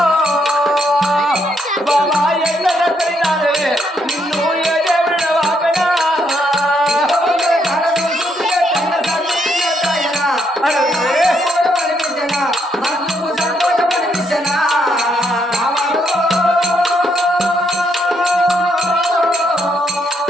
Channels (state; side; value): normal; both; correlation 0.75